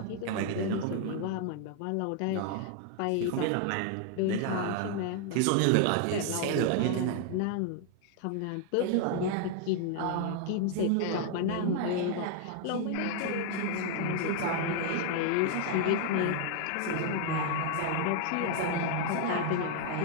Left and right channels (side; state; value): both; different; correlation 0.00